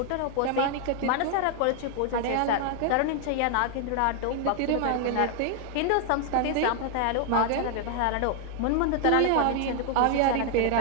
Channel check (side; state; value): both; different; correlation 0.00